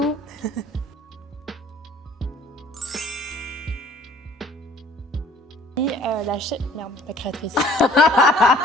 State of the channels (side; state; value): both; normal; correlation 0.55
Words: Et la créatrice.